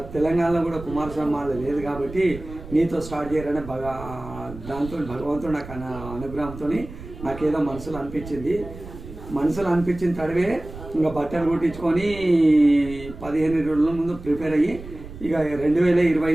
తెలంగాణలో కూడా కుమారస్వామి మాల లేదు కాబట్టి నీతో స్టార్ట్ చేయాలనే దాంతో భగవంతుడు నాకు అనుగ్రహంతో నాకేదో మనసులో అనిపించిన తడవే ఇంకా బట్టలు కుట్టించుకొని 15 రోజుల ముందు ప్రిపేర్ అయ్యి ఇక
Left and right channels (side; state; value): right; noise; rumble, 14 dB below the sound